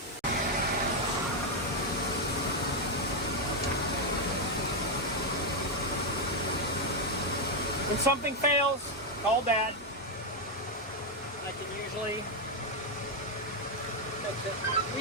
When something fails, call Dad. I can usually fix it.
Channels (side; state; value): both; normal; correlation 0.02